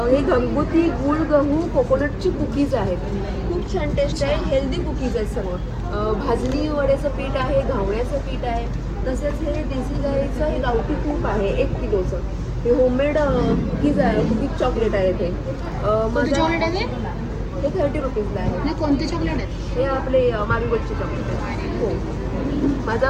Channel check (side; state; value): both; identical; correlation 1.00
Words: हे घरगुती गुळ गहू कोकोनटची कुकीज आहेत, खूप छान टेस्ट आहे. हेल्दी कुकीज आहेत सर्व. भाजणी वड्याचं पीठ आहे, घावण्याचं पीठ आहे. तसेच हे देसी गाईचं हे गावठी तूप आहे 1 किलोचं. हे होममेड कुकीज आहे, कुकीज चॉकलेट आहे ते. कोणते चॉकलेट आहे ते? हे 30 रुपीजला आहे. नाही, कोणते चॉकलेट आहेत? हे आपले मारीगोल्डचे चॉकलेट आहे. हो,